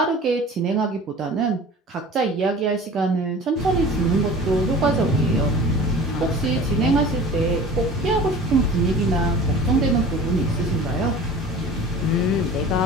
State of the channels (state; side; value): normal; both; correlation 0.41